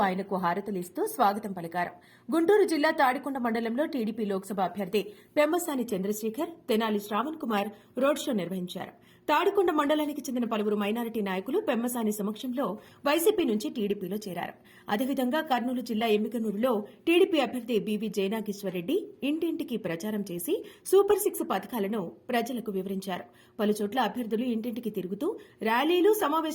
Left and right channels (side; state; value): both; identical; correlation 1.00